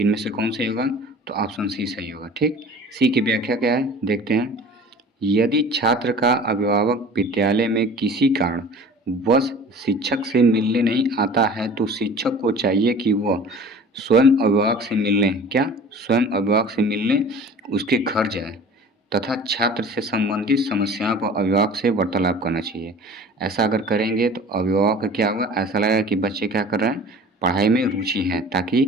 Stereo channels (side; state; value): both; normal; correlation 0.43